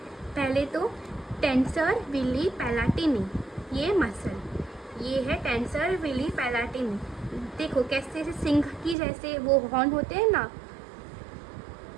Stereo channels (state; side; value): drops out; left; at 9.0 s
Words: पहले तो टेंसर विली पैलाटिनी, ये मसल, ये है टेंसर विली पैलाटिनी। देखो कैसे सिंह की जैसे वो हॉर्न होते हैं ना